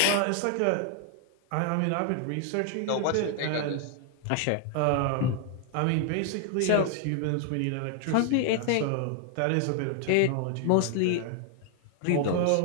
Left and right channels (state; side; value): different; both; correlation 0.00